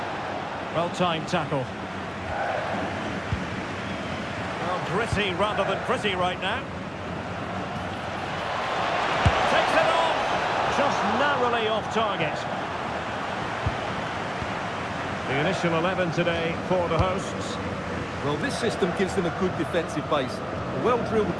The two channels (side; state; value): both; identical; correlation 1.00